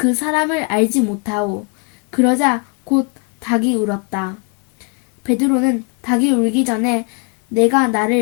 사람을 알지 못하오. 그러자 곧 닭이 울었다. 베드로는 닭이 울기 전에 내가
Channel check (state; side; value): quieter; right; 33.2 dB